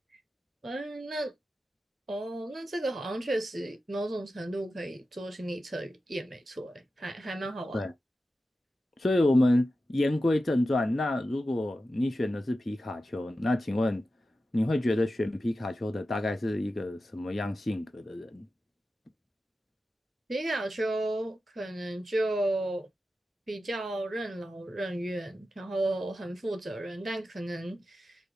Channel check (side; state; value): both; normal; correlation 0.92